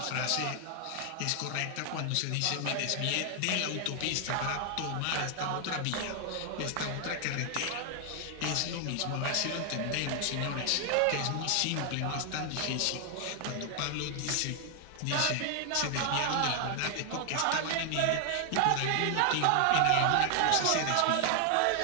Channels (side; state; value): both; different; correlation 0.00